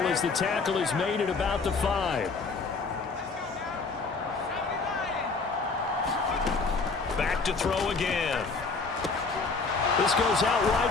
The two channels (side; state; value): right; quieter; 4.3 dB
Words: as the tackle is made at about the 5. Back to throw again. This goes out